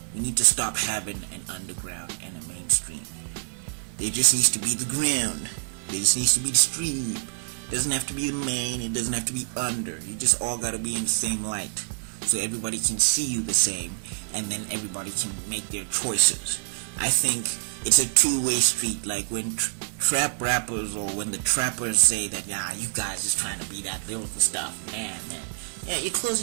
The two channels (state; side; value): silent; left; 60 dB below the other